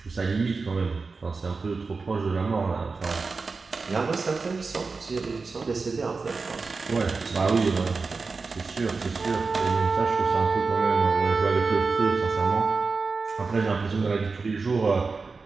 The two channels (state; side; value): quieter; left; 4.3 dB